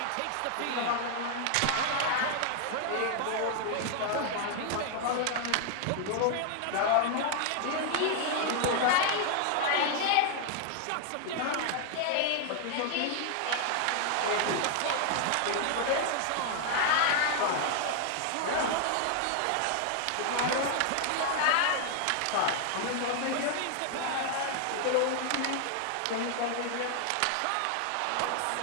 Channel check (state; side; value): different; both; correlation 0.00